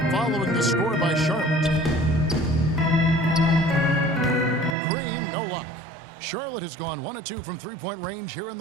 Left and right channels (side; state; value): left; drops out; at 4.8 s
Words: following the score by Charlotte. Green, no luck. Charlotte has gone 1 of 2 from three-point range here in